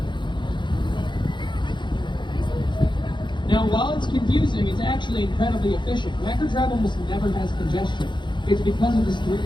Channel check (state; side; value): late; right; 0.23 ms